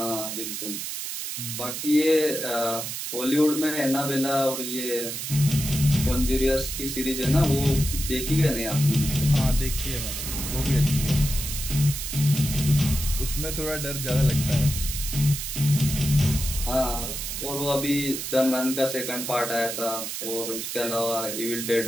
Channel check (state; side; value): noise; right; hiss, 5 dB below the sound